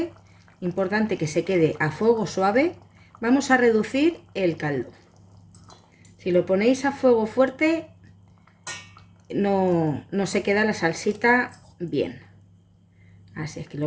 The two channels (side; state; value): both; identical; correlation 1.00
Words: importante que se quede a fuego suave, vamos a reducir el caldo. Si lo ponéis a fuego fuerte, no se queda la salsita bien. Así es que